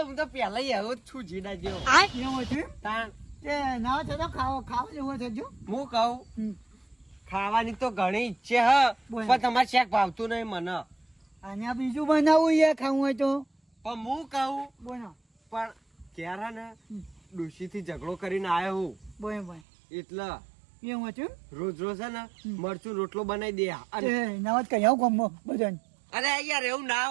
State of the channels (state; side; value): drops out; left; at 19.6 s